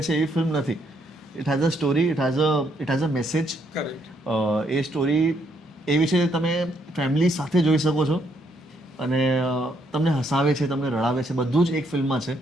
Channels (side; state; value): both; normal; correlation 0.73